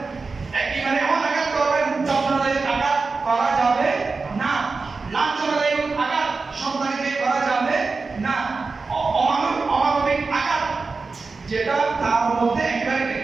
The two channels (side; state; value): left; quieter; 4.2 dB